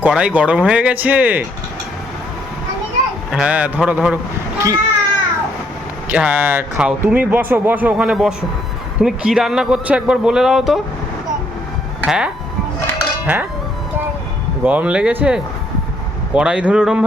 কড়াই গরম হয়ে গেছে? হ্যাঁ ধরো ধরো। কি? হ্যাঁ খাও, তুমি বসো বসো, ওখানে বসো। তুমি কি রান্না করছো একবার বলে দাও তো। হ্যাঁ হ্যাঁ, গরম লেগেছে? কড়াই ধরে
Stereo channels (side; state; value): both; normal; correlation 0.69